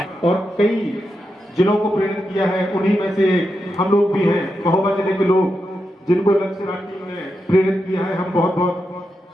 और कई जिलों को प्रेरित किया है, उन्हीं में से हम लोग भी हैं, महोबा जिले के लोग जिनको लक्ष्य राज टीम ने प्रेरित किया है। हम बहुत बहुत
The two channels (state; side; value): normal; both; correlation 0.87